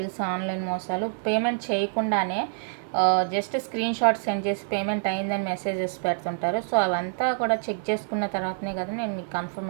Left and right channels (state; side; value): silent; left; 58 dB below the other